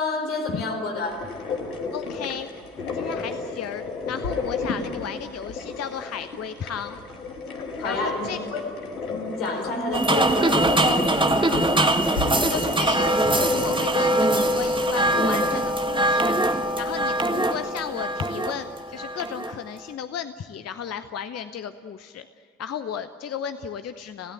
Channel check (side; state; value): both; normal; correlation 0.44